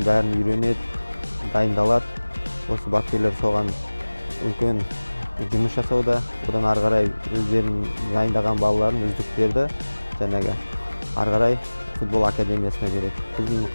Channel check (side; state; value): both; inverted; correlation -1.00